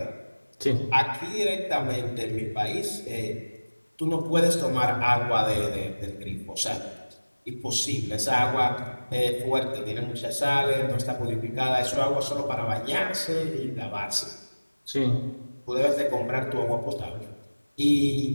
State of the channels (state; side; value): inverted; both; correlation -1.00